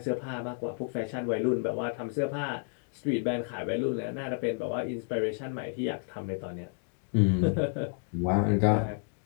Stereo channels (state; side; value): silent; right; 56 dB below the other